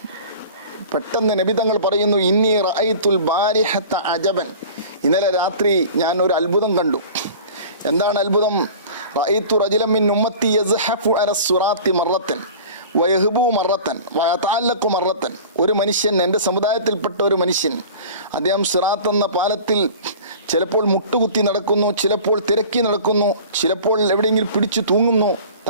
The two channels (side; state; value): both; inverted; correlation -0.41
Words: പെട്ടെന്ന് നബി തങ്ങൾ പറയുന്നു, ഇന്നി റഅയ്തുൽ ബാരിഹത അജബൻ, ഇന്നലെ രാത്രി ഞാൻ ഒരു അത്ഭുതം കണ്ടു. എന്താണ് അത്ഭുതം? റഅയ്തു റജുലൻ മിൻ ഉമ്മത്തി യസ്ഹഫു അല സിറാത്തി മറത്തൻ വയഹ്ബു മറത്തൻ വയതഅല്ലഖു മറത്തൻ. ഒരു മനുഷ്യൻ, എൻ്റെ സമുദായത്തിൽപ്പെട്ട ഒരു മനുഷ്യൻ, അദ്ദേഹം സിറാത്ത് എന്ന പാലത്തിൽ ചിലപ്പോൾ മുട്ടുകുത്തി നടക്കുന്നു, ചിലപ്പോൾ തിരക്കി നടക്കുന്നു, ചിലപ്പോൾ എവിടെയെങ്കിലും പിടിച്ചു തൂങ്ങുന്നു,